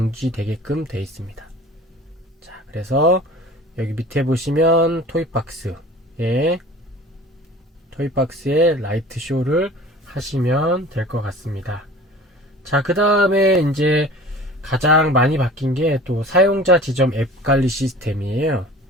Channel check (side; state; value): both; normal; correlation 0.43